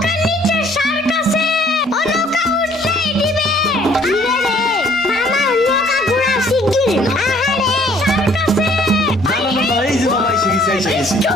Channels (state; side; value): normal; both; correlation 0.59